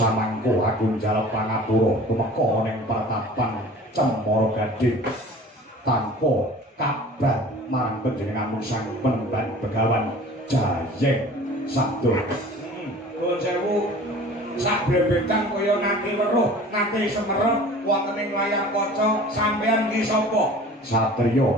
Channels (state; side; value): normal; both; correlation 0.44